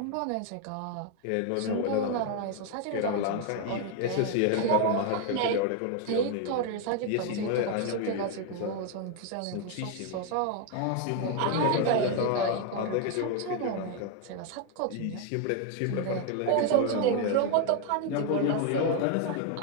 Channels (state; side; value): different; both; correlation 0.01